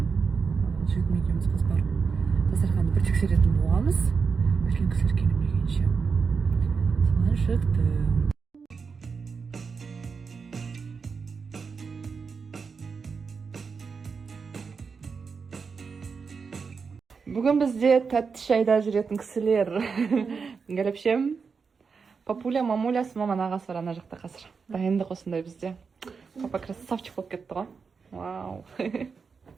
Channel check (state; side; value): quieter; left; 5.4 dB